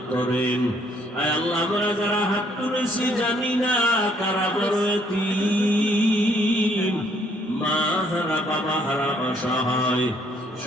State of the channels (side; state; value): both; normal; correlation 0.66